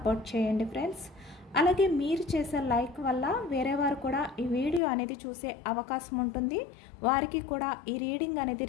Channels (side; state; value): right; drops out; at 4.8 s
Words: చేయండి ఫ్రెండ్స్. అలాగే మీరు చేసే లైక్ వల్ల వేరే వారు కూడా ఈ వీడియో అనేది చూసే అవకాశం ఉంటుంది. వారికి కూడా ఈ రీడింగ్ అనేది